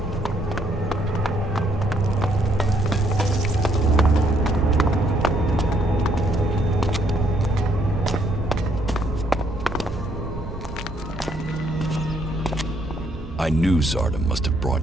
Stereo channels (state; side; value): normal; both; correlation 0.70